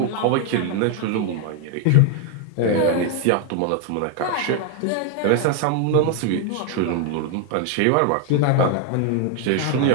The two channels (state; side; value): different; both; correlation 0.00